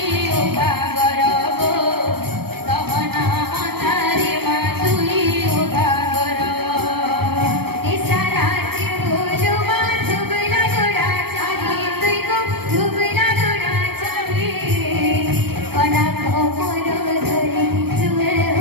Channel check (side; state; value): left; late; 0.96 ms